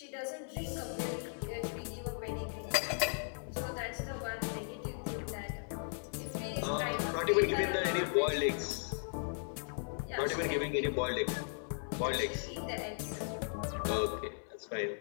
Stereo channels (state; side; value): silent; right; digital silence